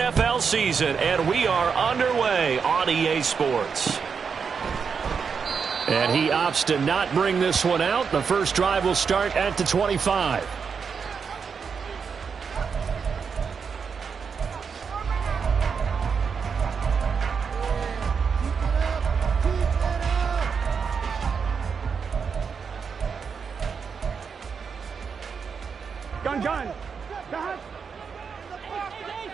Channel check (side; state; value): left; quieter; 6.0 dB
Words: season, and we are underway on EA Sports. And he opts to not bring this one out. The first drive will start at the 25. Gun.